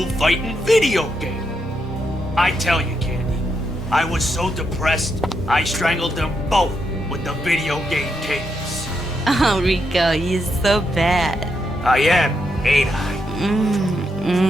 fighting video game. I tell you, Candy, I was so depressed, I strangled them both with the video game cables. Oh, Rico, you're so bad. I am, ain't I?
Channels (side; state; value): both; normal; correlation 0.81